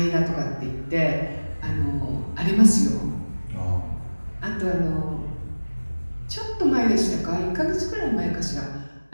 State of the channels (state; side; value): inverted; both; correlation -1.00